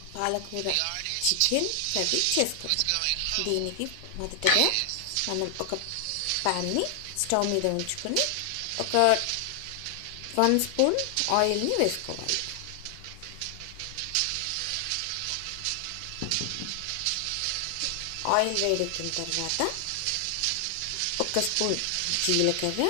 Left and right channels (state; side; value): different; both; correlation 0.00